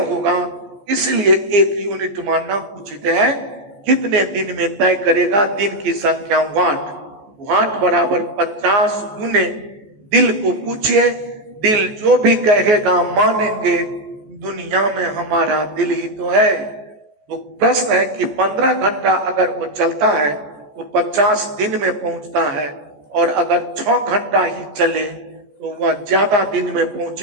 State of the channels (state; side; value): late; left; 14 ms